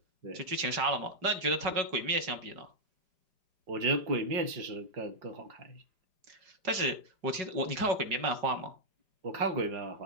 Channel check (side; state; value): left; late; 5.0 ms